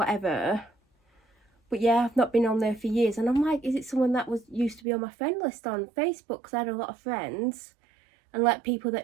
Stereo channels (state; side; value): drops out; left; at 4.8 s